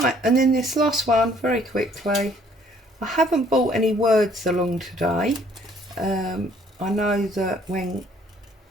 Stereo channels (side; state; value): both; normal; correlation 0.61